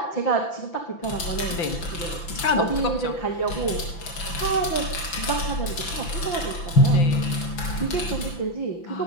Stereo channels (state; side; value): late; right; 5.9 ms